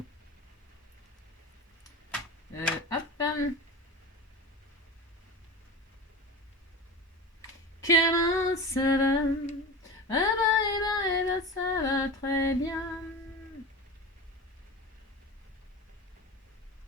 Hop. Comment ça va? Ça va très bien.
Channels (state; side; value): normal; both; correlation 0.29